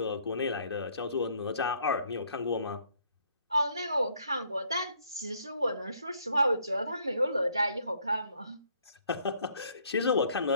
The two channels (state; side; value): inverted; both; correlation -0.65